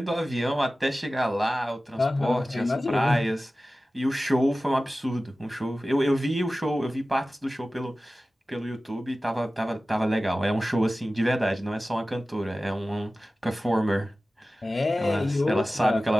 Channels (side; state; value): both; normal; correlation 0.96